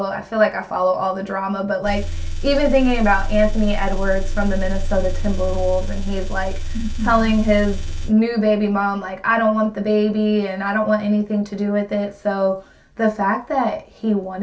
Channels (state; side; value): identical; both; correlation 1.00